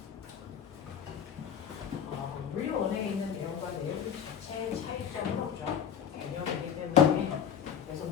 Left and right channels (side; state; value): right; quieter; 8.6 dB